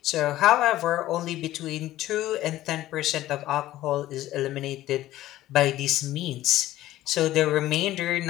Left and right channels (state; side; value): quieter; right; 14.9 dB